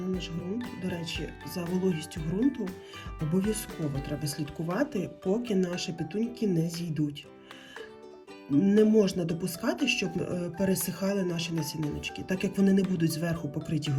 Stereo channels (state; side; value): identical; both; correlation 1.00